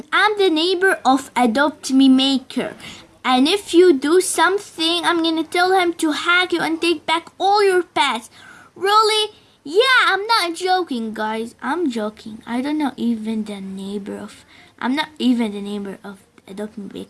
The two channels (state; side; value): identical; both; correlation 1.00